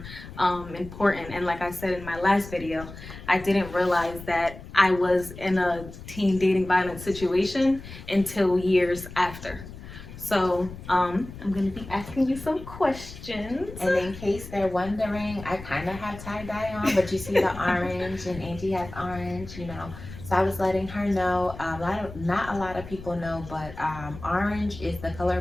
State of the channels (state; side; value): noise; left; rumble, 14 dB below the sound